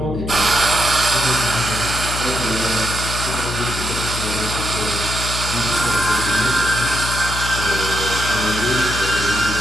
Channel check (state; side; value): noise; left; hum, 6 dB below the sound